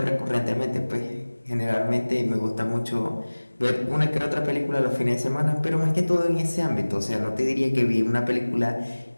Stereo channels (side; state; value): both; inverted; correlation -1.00